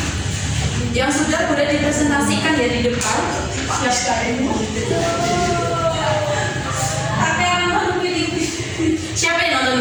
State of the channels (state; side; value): identical; both; correlation 1.00